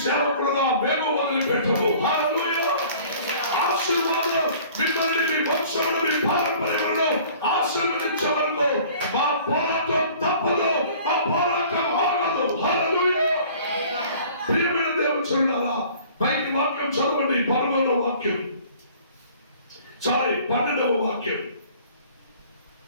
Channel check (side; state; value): both; inverted; correlation -0.50